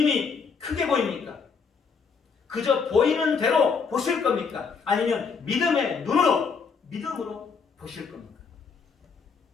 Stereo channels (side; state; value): right; quieter; 5.6 dB